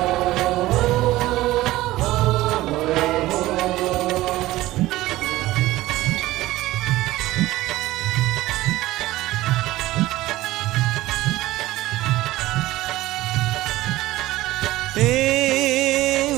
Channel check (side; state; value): left; quieter; 17.1 dB